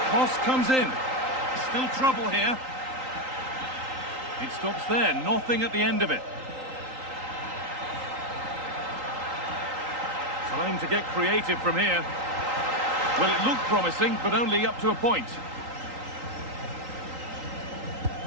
cross comes in. Still trouble here. It stops there. Nothing at the end of it. Time to get creative from here. Well, it looked promising, but only up to a point.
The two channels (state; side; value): late; left; 3.8 ms